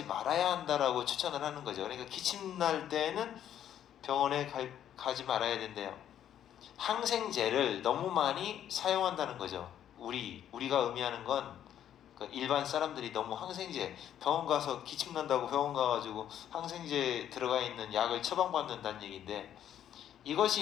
말아야 한다라고 추천을 하는 거죠. 그러니까 기침 날 때는 병원에 가지 말아야 된대요. 항생제를 너무 많이 사용한다는 거죠. 우리가 의미하는 건 일반 사람들이 너무 항생제 병원 가서 기침 난다고 병원 가가지고 항생제 들어가 있는 약을 처방받는다는 얘기인데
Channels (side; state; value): right; quieter; 10.5 dB